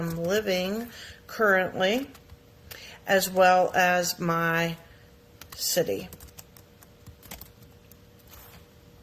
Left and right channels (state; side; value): identical; both; correlation 1.00